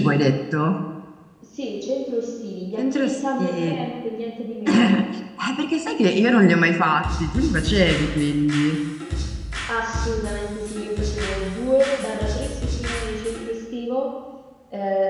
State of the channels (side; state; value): both; identical; correlation 1.00